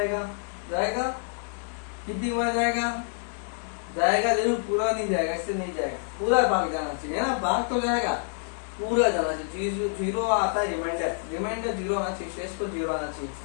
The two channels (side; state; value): right; silent; 60 dB below the other